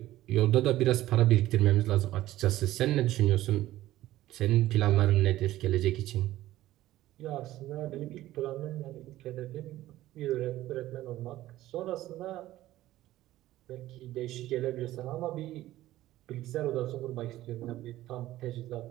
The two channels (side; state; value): left; quieter; 15.2 dB